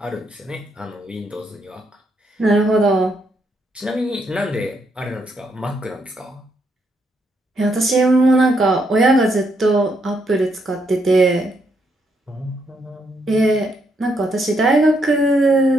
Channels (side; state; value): both; normal; correlation 0.76